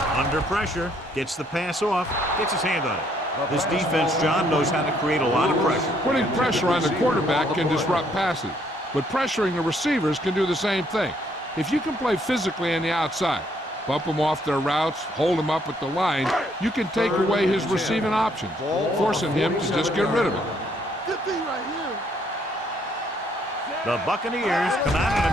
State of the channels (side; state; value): both; normal; correlation 0.68